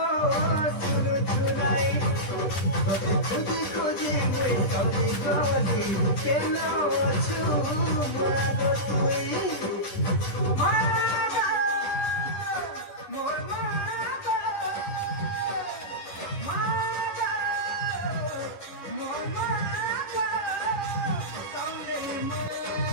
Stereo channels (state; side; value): late; right; 10 ms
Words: শুরু শুনাই তোতে খুঁজি খুঁজি মুই ঠকি গলি কেন আছু মাগ তুই মাগ মোর মাগ মাগ মোর মাগ